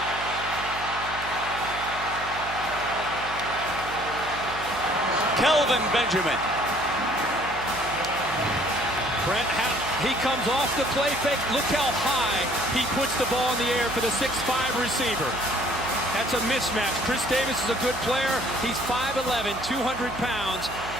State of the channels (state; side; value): noise; right; hum, 13 dB below the sound